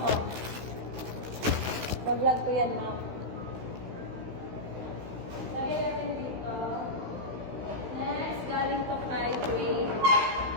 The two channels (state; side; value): late; left; 16 ms